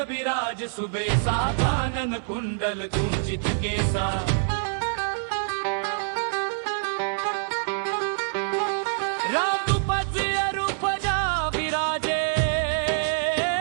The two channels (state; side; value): silent; left; 58 dB below the other